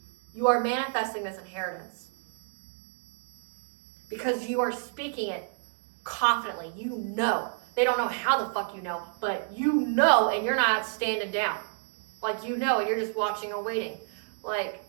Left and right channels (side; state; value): left; silent; digital silence